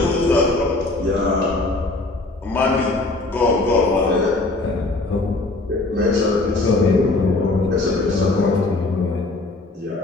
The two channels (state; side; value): quieter; right; 3.1 dB